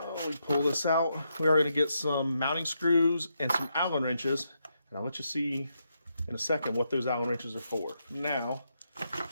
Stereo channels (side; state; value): both; inverted; correlation -0.81